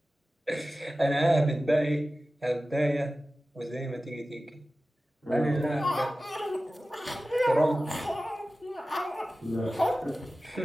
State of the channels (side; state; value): both; normal; correlation 0.96